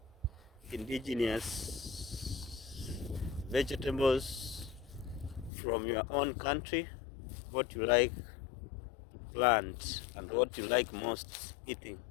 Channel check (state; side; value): drops out; right; at 5.5 s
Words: indigenous vegetables from your own country, what you like to plant and what you like most eating